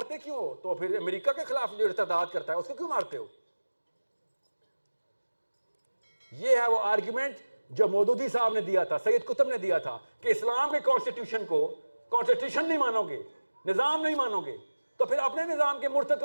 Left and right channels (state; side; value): inverted; both; correlation -1.00